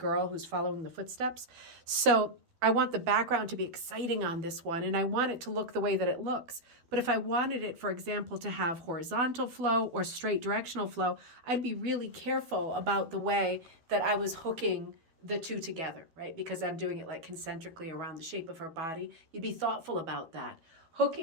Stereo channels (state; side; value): late; left; 12 ms